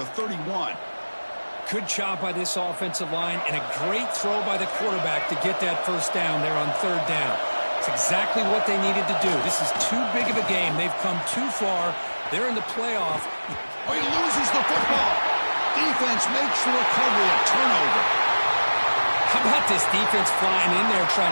31. Good job by this offensive line and a great throw by the quarterback to get that first down there on third down. It's exactly what they needed to do. This is too big of a game. They've come too far. They're in the playoff. Oh, he loses the football. Defense makes the recovery, a turnover. How about this defense flying in there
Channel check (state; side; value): inverted; both; correlation -1.00